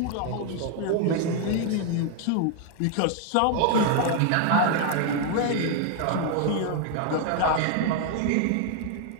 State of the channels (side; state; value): both; different; correlation 0.00